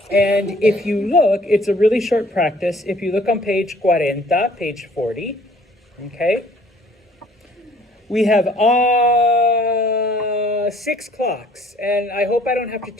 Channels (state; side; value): normal; both; correlation 0.58